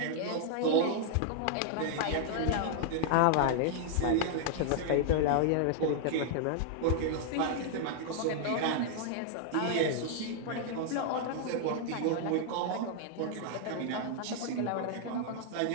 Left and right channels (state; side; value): different; both; correlation -0.01